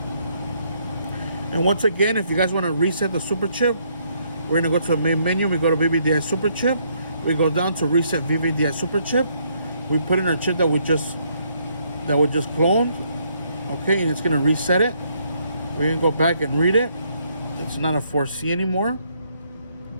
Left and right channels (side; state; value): both; inverted; correlation -0.71